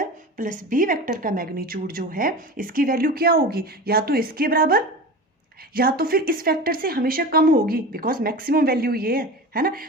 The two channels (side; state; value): both; normal; correlation 0.31